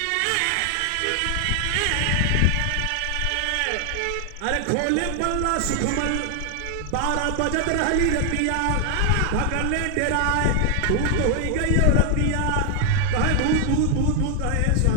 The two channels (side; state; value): both; different; correlation 0.00